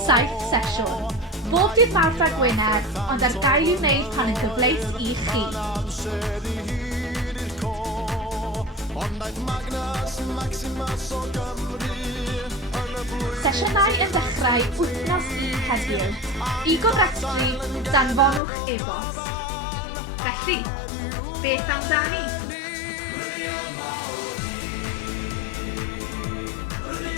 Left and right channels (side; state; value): right; drops out; at 18.4 s